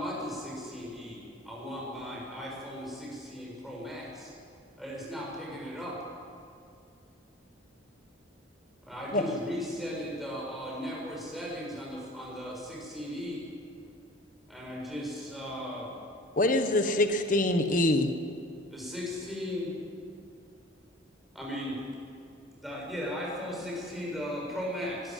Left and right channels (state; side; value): normal; both; correlation 0.45